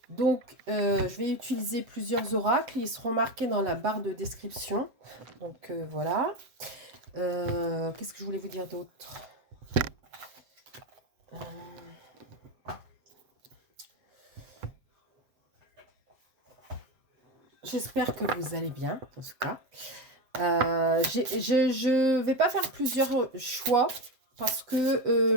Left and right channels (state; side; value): late; left; 7.6 ms